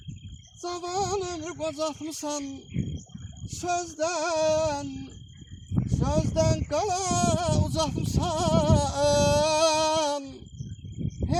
zaman ömür bozatmışsan. Sözden kala uzatmışsan.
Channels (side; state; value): both; identical; correlation 1.00